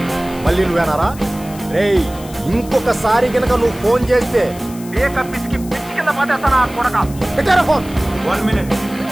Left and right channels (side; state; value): left; noise; hiss, 18 dB below the sound